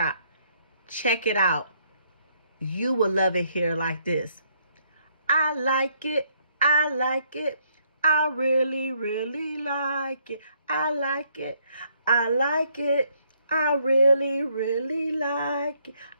Check it out. You will love it here like this. I like it. I like it. I really, really like it. I like it. I like it. I really, really like it.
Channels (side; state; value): both; inverted; correlation -0.70